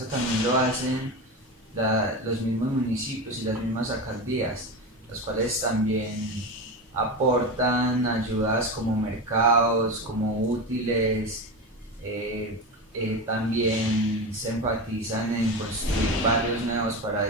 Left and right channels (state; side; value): normal; both; correlation 0.22